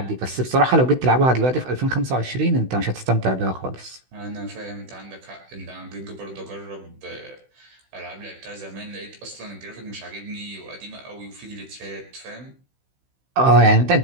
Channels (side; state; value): left; late; 16 ms